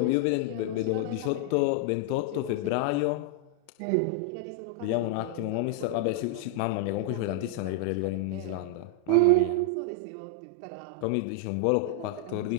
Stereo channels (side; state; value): both; different; correlation -0.01